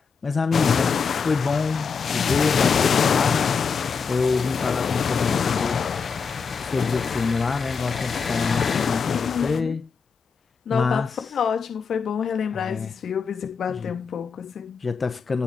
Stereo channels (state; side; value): quieter; right; 5.6 dB